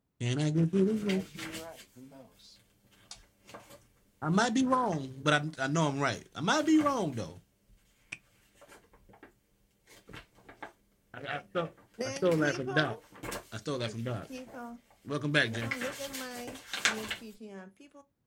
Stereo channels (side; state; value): both; identical; correlation 1.00